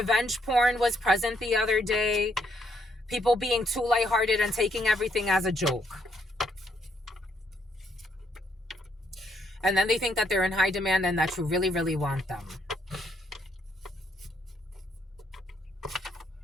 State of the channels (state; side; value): normal; both; correlation 0.73